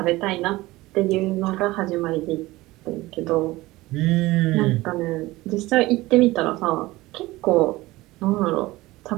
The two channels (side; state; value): left; quieter; 19.2 dB